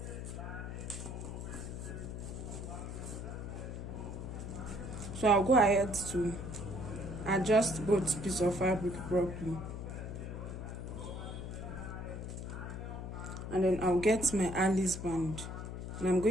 So I'll go ahead to adjust both pieces of fabric properly. And then I'll get my Alice band. And I'm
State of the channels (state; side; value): noise; left; hum, 7 dB below the sound